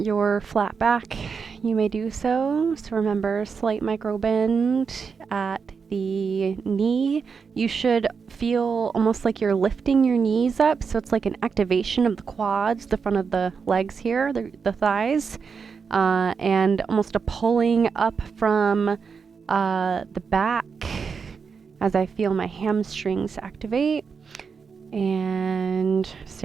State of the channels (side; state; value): left; quieter; 5.7 dB